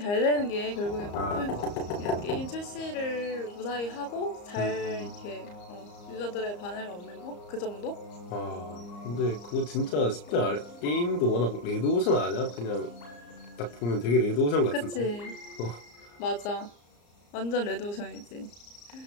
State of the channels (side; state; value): right; late; 34 ms